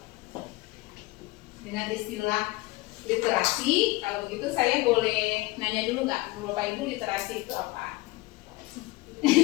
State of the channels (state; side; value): quieter; right; 21.5 dB